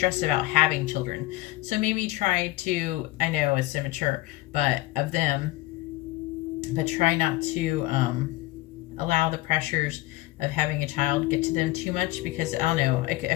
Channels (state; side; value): quieter; right; 18.6 dB